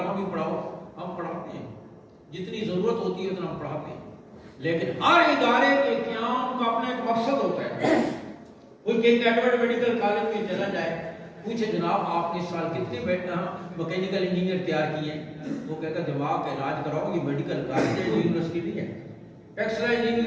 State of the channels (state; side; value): identical; both; correlation 1.00